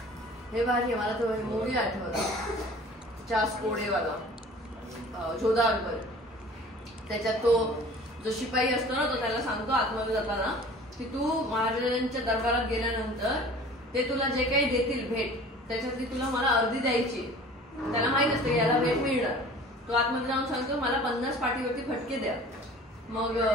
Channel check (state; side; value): normal; both; correlation 0.45